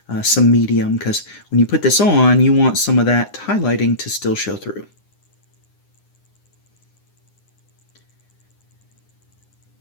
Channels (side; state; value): right; late; 9.8 ms